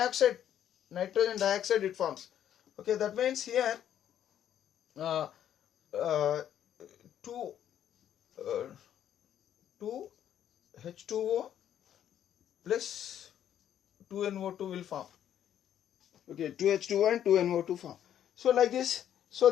It forms. Okay, that means here 2 H2O plus 2NO2 will form. Okay, 2H2O and 2NO2 form. So like this. So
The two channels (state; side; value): quieter; right; 10.3 dB